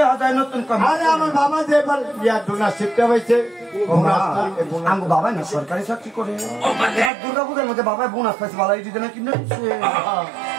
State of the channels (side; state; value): left; drops out; at 7.1 s